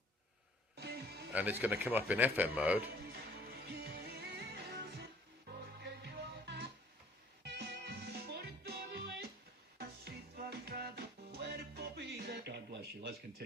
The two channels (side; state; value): both; normal; correlation 0.54